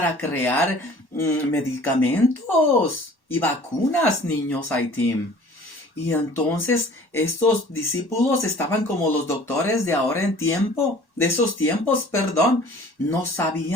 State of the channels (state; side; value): late; right; 1.1 ms